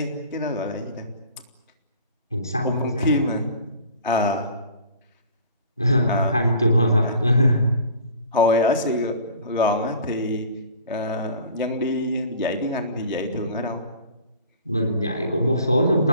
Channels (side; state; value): both; inverted; correlation -0.45